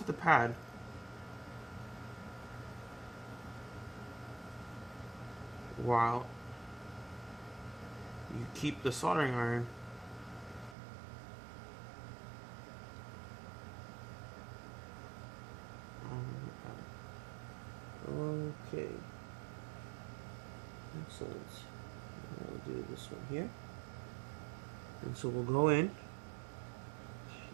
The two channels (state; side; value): drops out; left; at 10.8 s